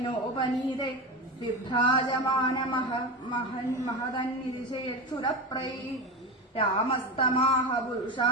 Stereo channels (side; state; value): both; normal; correlation 0.22